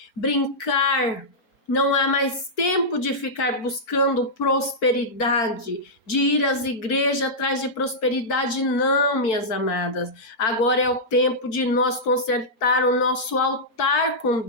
brincar. Não há mais tempo de ficar buscando prosperidade, de ir às igrejas atrás de prosperidade, não, minhas amadas. Agora é o tempo de nós consertar o nosso altar com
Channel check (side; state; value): right; late; 4.5 ms